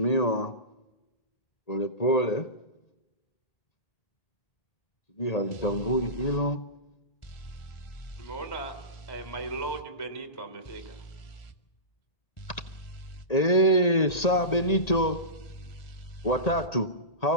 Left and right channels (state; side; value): late; right; 1.8 ms